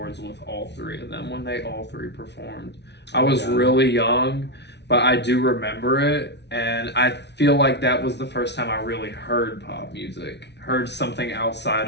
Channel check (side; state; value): right; late; 0.50 ms